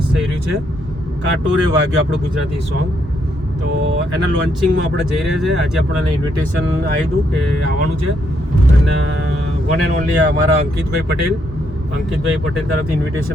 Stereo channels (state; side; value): normal; both; correlation 0.75